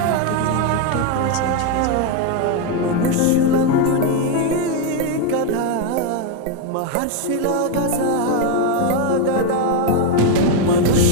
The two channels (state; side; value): different; both; correlation 0.02